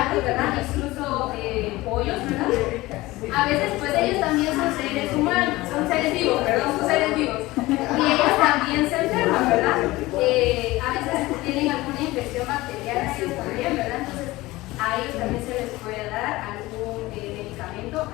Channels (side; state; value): right; quieter; 19.3 dB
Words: ¿verdad? Incluso pollos, ¿verdad? A veces pues ellos también son seres humanos, son seres vivos, perdón, son seres vivos. Y ellos también se enferman, ¿verdad? A veces tienen alguna infección bacteriana, ellos también, ¿verdad? Entonces a ellos también se les puede dar algún medicamento